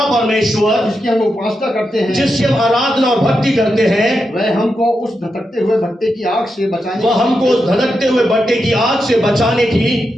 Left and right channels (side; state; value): both; normal; correlation 0.87